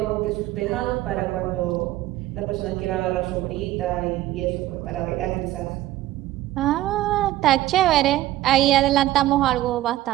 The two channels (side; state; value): left; quieter; 15.3 dB